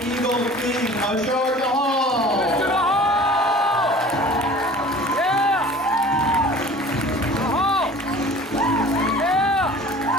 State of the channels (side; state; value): both; normal; correlation 0.44